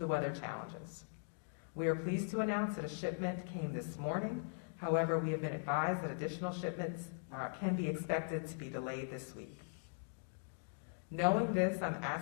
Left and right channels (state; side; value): silent; right; digital silence